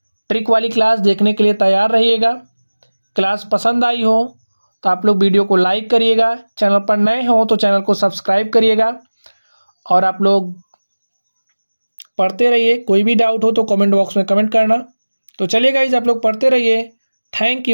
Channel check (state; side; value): inverted; both; correlation -1.00